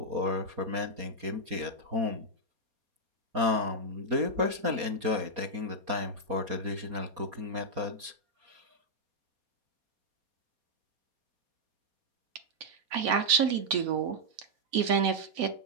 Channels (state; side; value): late; left; 4.2 ms